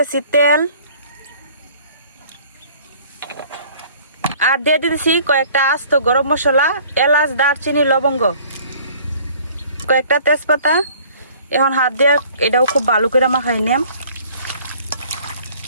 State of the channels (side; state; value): both; inverted; correlation -0.53